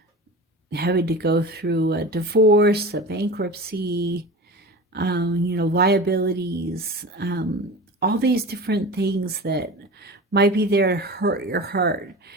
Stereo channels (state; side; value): normal; both; correlation 0.32